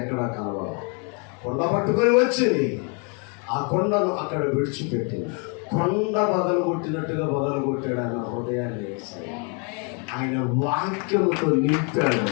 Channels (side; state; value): right; quieter; 36.0 dB